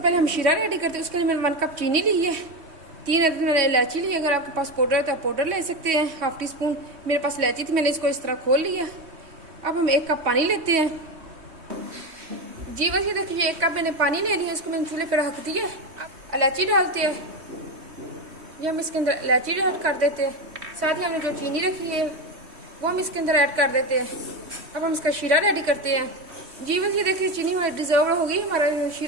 हम शीरा रेडी करते हैं। उसके लिए मैंने 1 कप चीनी ली है, 3 अदद मैंने इलायची ली है। अगर आपके पास पाउडर है तो आप पाउडर ले सकते हैं, हाफ टी स्पून। मेरे पास इलायची थी, मैंने इसको इस तरह खोल लिया। अब हम 1 कप पानी लेते हैं। जी बस ये देखिए 1 कप मैंने पानी ले लिया, इसको मैंने चूल्हे पर रख दिया। इलायची डालते हैं, ये हम इसके अंदर इलायची ऐड कर देते हैं। साथ ही हमने जो चीनी रखी है वो हम इसके अंदर ऐड कर देते हैं। अब हम इसका शीरा रेडी करते हैं। जी बस ये देखिए चीनी हमारी डिजर्व होगी, हमारा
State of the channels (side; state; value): left; late; 3.2 ms